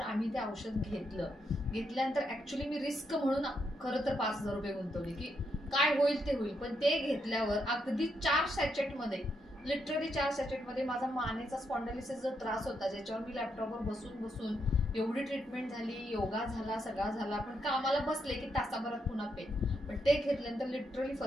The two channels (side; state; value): both; normal; correlation 0.79